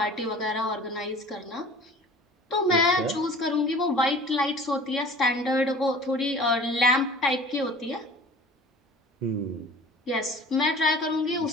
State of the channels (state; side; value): normal; both; correlation 0.44